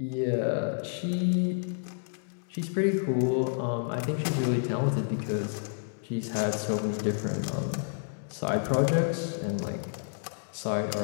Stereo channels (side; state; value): right; silent; digital silence